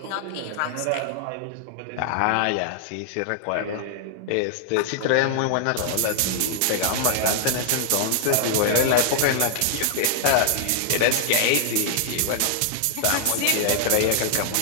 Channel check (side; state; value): both; different; correlation -0.01